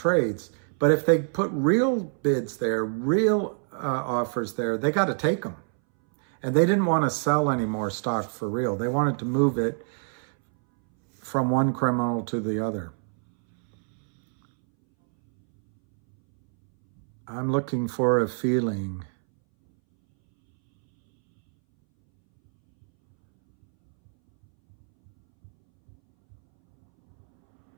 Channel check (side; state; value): left; silent; 61 dB below the other